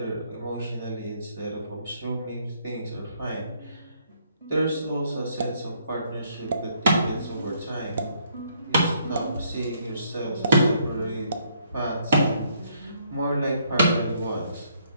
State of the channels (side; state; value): both; inverted; correlation -0.69